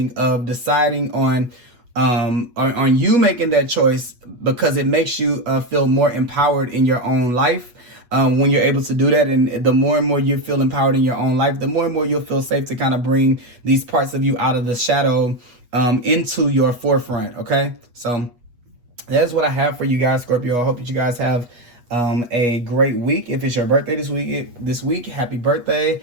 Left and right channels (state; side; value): late; left; 8.3 ms